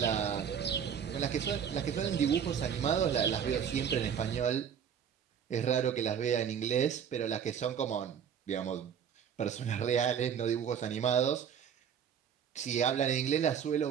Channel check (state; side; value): quieter; left; 8.1 dB